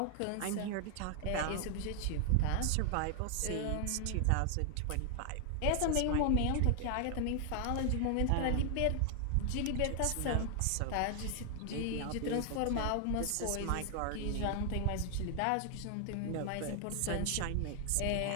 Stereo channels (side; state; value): both; different; correlation 0.00